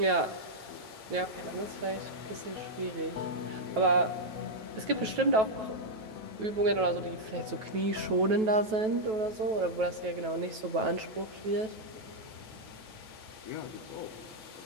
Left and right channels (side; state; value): left; late; 9.2 ms